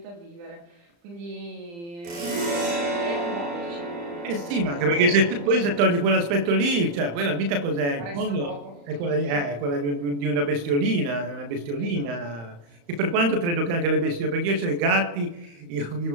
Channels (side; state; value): left; late; 35 ms